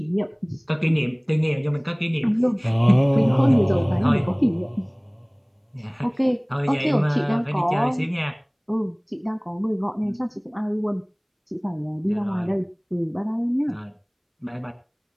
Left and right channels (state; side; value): identical; both; correlation 1.00